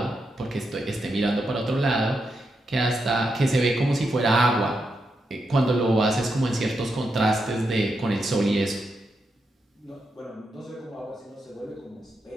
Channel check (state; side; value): normal; both; correlation 0.84